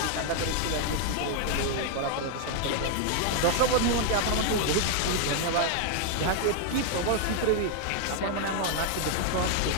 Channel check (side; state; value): both; different; correlation 0.00